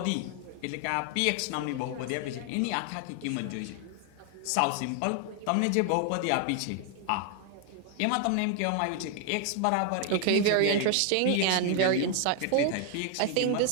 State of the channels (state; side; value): different; both; correlation 0.00